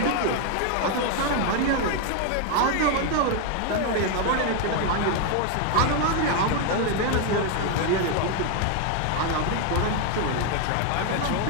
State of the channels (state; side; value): different; both; correlation 0.01